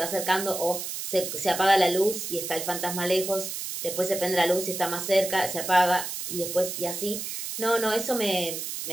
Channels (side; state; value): right; noise; hiss, 5 dB below the sound